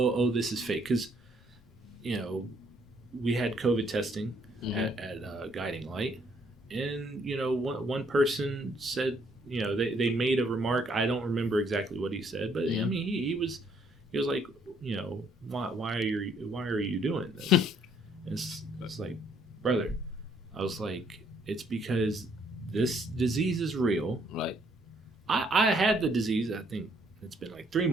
this is fake, because we had COVID testing at Guiding Light, and one person said they made a remark. I don't remember exactly what he said, but I mean, he was like, why are you doing this? And it's like, brother, I was like, it's because this disease is real. Right. I had the disease. I think it's been like 3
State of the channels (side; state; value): both; normal; correlation 0.67